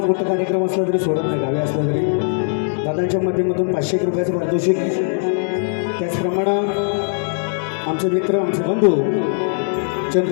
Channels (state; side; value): silent; right; digital silence